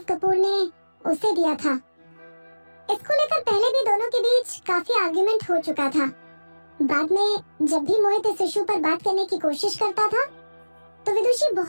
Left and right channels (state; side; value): inverted; both; correlation -1.00